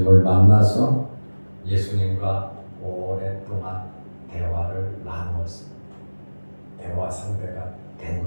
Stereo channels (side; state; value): both; inverted; correlation -1.00